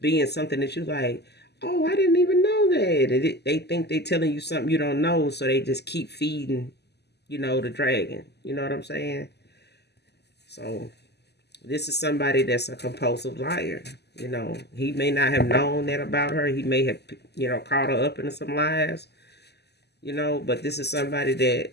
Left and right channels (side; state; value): right; late; 0.49 ms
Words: being something that you like, oh, I didn't even know that. And they think they telling you something you don't know, so they just keep feeding, the dragon. You know what I'm saying? So this is somebody that's a compulsive liar. He may not have known that about her. He may have, caught her up into some lies. But this is somebody that